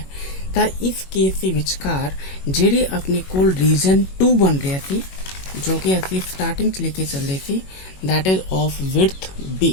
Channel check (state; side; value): late; right; 21 ms